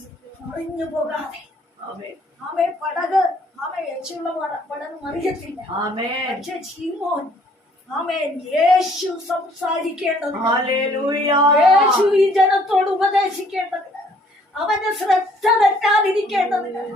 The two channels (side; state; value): both; normal; correlation 0.61